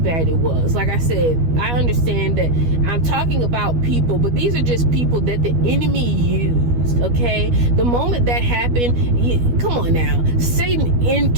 it was. Like I said, I understand that I'm talking about people, but these are just people that the enemy used, okay? The moment that happened, come on now, Satan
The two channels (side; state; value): left; late; 12 ms